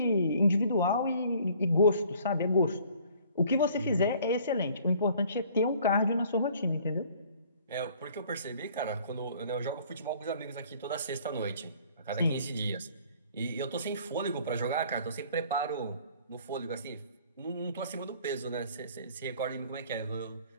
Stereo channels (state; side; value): inverted; both; correlation -0.55